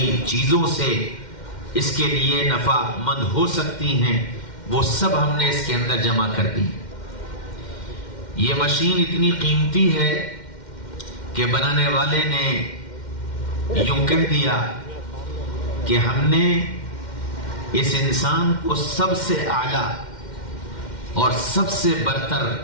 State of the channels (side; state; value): right; late; 2.1 ms